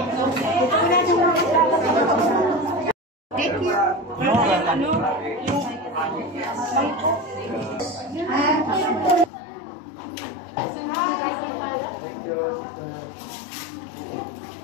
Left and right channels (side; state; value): right; drops out; at 9.3 s